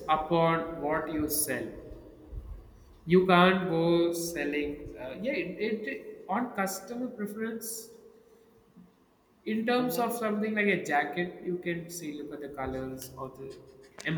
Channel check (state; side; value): identical; both; correlation 1.00